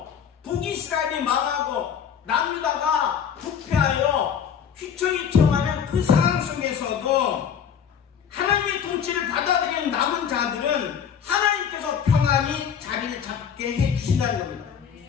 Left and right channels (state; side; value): quieter; right; 7.8 dB